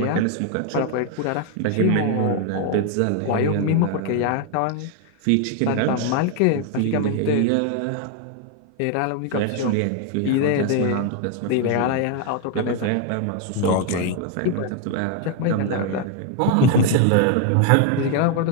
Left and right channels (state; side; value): different; both; correlation 0.01